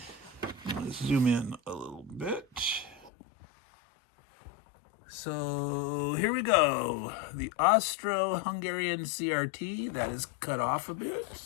zoom in a little bit. So here we go. The Austro-Hungarian CRT, that is cut off a bit.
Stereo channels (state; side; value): drops out; right; at 3.1 s